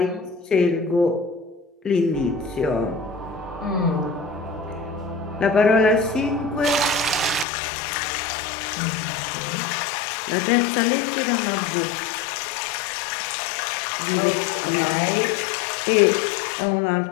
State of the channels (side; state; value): right; drops out; at 7.5 s